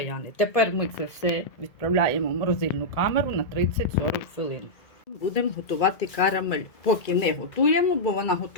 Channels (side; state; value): right; late; 1.9 ms